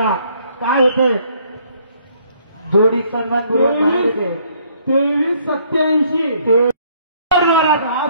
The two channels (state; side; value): inverted; both; correlation -0.64